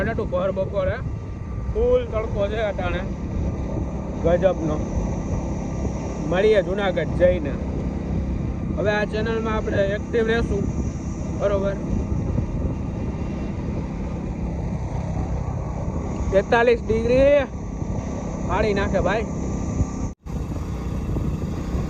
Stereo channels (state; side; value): identical; both; correlation 1.00